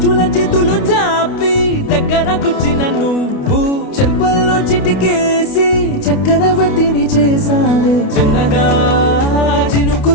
చేతులు చాపి దగ్గరకొచ్చిన నువ్వు చెంపల్లో చిటికేసి చక్రవర్తిని చేసావే చిన్నగా చినుకు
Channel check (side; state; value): right; late; 29 ms